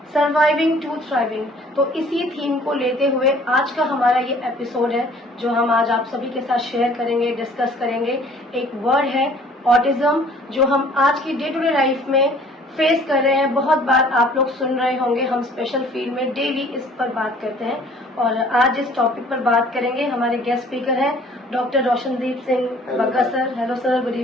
surviving to thriving. तो इसी थीम को लेते हुए आज का हमारा ये एपिसोड है, जो हम आज आप सभी के साथ शेयर करेंगे, डिस्कस करेंगे। एक वर्ड है ऑटिज्म, जो हम आज की डे टू डे लाइफ में फेस कर रहे हैं। बहुत बार आप लोग सुन रहे होंगे, हम स्पेशल फील्ड में डेली इस पर बात करते हैं और आज इस टॉपिक पर बात करेंगे। हमारे गेस्ट स्पीकर हैं doctor Roshandeep Singh Bagga sir. Hello sir, good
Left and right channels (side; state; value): both; normal; correlation 0.54